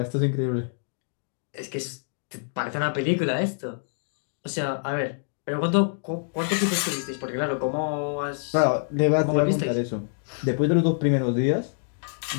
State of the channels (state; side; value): silent; right; digital silence